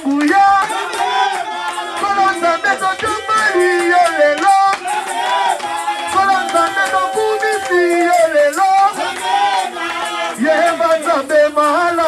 nguya. Kolonzambe, no jumali, yo lelo. Kolonzambe, no kumisi, yo lelo. Yehova nzambe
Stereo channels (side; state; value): both; identical; correlation 1.00